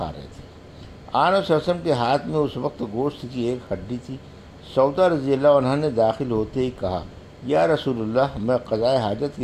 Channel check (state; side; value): identical; both; correlation 1.00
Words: رہے تھے۔ آن صلی اللہ علیہ وسلم کے ہاتھ میں اس وقت گوشت کی ایک ہڈی تھی۔ سودا رضی اللہ عنہ نے داخل ہوتے ہی کہا، یا رسول اللہ، میں قضاء حاجت